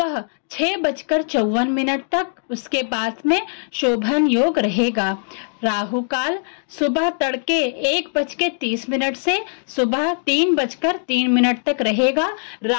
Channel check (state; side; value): silent; right; digital silence